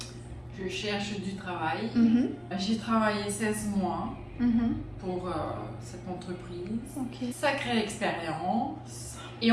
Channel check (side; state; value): both; identical; correlation 1.00